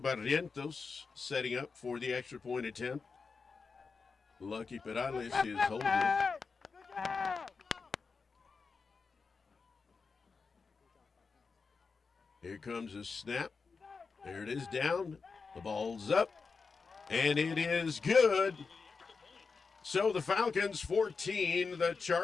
setting up for the extra point attempt. Lucky Perales is holding it. Here comes a snap. There it is down. The ball's up. And it is good. So the Falcons 14, the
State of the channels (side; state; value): right; quieter; 4.8 dB